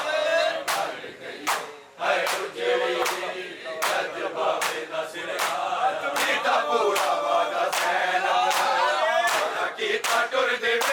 ਮਰ ਗਈ ਹਾਏ ਉਜੜੀ ਜਦ ਬਾਬੇ ਦਾ ਸਿਰ ਆਇਆ ਕੀਤਾ ਪੂਰਾ ਵਾਦਾ ਸੈਨਾ ਕੀਤਾ ਟੁਰਦੇ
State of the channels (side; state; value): both; identical; correlation 1.00